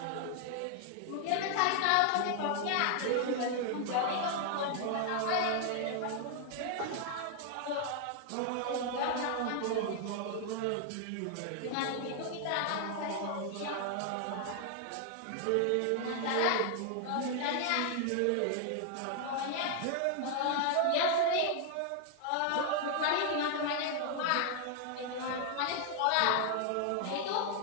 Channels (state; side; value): different; both; correlation 0.00